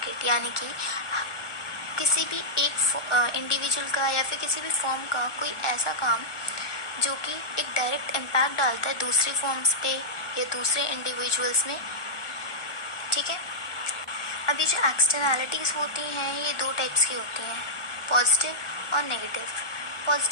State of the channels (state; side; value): late; right; 1.2 ms